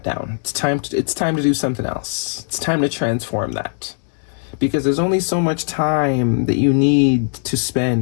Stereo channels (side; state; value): right; silent; 63 dB below the other